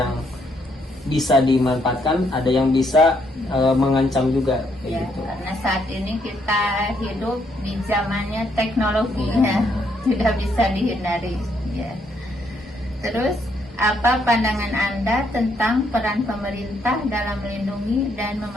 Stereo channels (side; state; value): both; normal; correlation 0.73